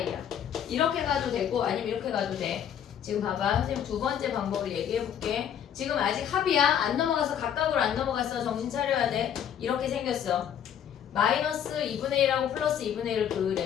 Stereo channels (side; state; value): right; quieter; 9.2 dB